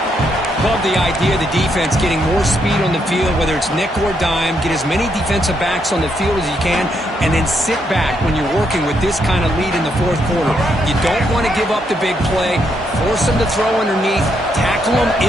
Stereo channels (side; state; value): both; normal; correlation 0.77